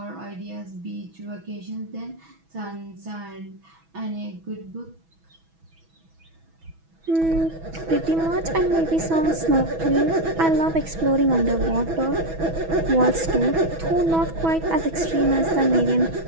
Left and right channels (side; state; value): left; late; 6.1 ms